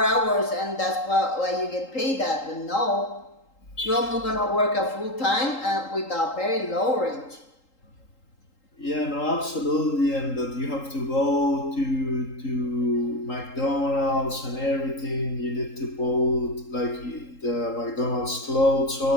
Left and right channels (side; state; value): right; late; 3.8 ms